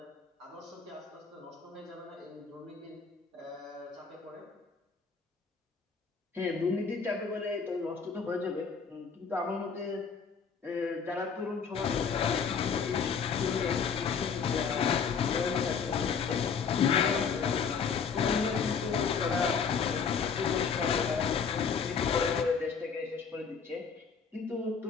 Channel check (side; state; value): right; quieter; 6.1 dB